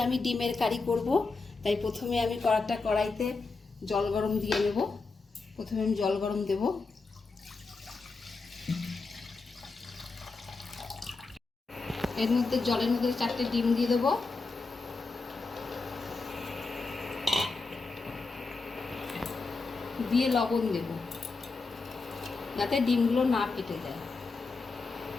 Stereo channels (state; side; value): quieter; right; 4.0 dB